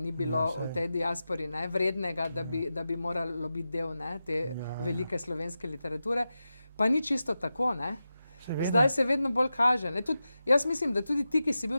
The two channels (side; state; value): both; inverted; correlation -0.92